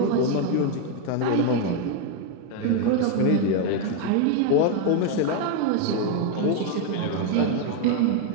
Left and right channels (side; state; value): both; different; correlation 0.01